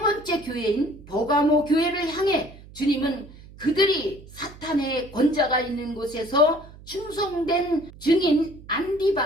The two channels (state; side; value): noise; right; hum, 20 dB below the sound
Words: 교회인 버가모 교회를 향해 주님은 그들이 사탄의 권자가 있는 곳에서 충성된 증인